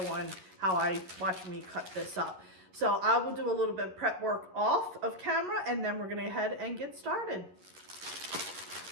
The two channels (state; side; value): late; left; 11 ms